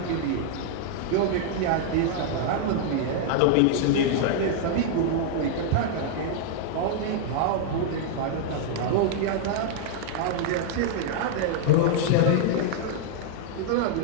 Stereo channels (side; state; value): both; different; correlation -0.01